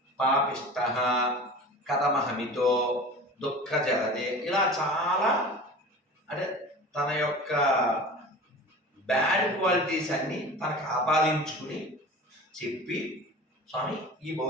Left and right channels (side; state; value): both; normal; correlation 0.37